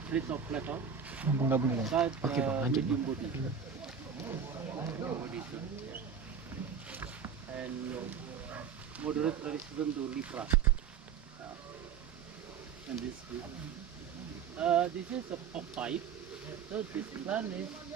rich of flavor, Gabung-gabung ya. but Oke, Bang, lanjut, medium body. And moderate resistant to lepra. And this is a pop pipe. So this plant is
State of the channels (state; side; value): quieter; left; 7.0 dB